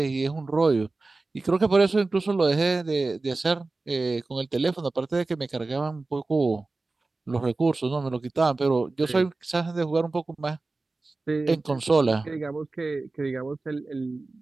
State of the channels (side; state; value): left; quieter; 3.4 dB